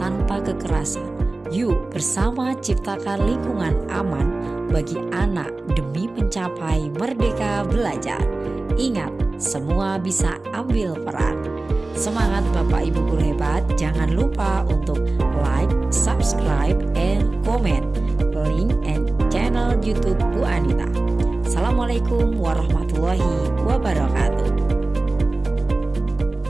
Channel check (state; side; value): quieter; left; 3.1 dB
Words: tanpa kekerasan. Yuk bersama ciptakan lingkungan aman bagi anak demi mencapai merdeka belajar. Ingat, semua bisa ambil peran. Semangat Bapak Ibu guru hebat. Jangan lupa untuk like, subscribe, and comment link and channel YouTube Bu Anita. Assalamualaikum warahmatullahi wabarakatuh.